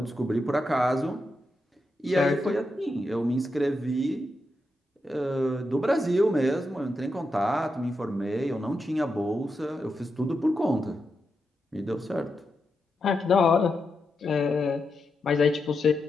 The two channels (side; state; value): both; normal; correlation 0.86